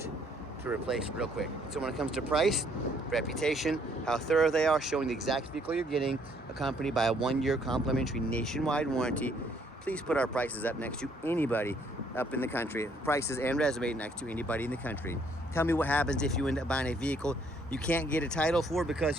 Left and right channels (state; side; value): normal; both; correlation 0.66